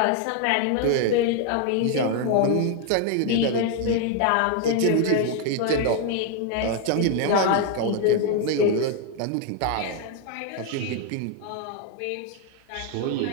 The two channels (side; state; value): both; different; correlation 0.00